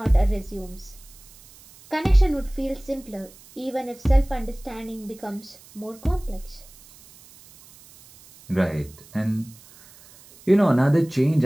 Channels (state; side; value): noise; right; hiss, 23 dB below the sound